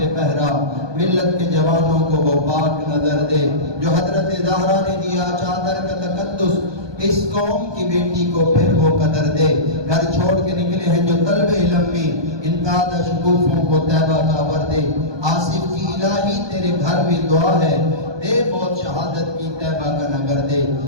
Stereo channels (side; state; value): left; late; 1.2 ms